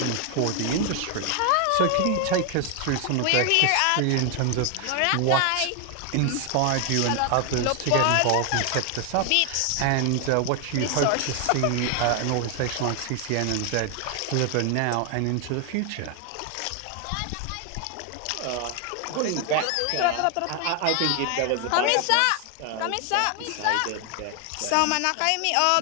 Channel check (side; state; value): both; different; correlation 0.01